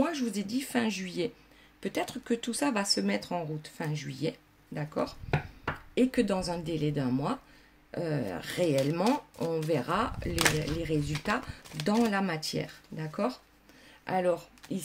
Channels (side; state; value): both; identical; correlation 1.00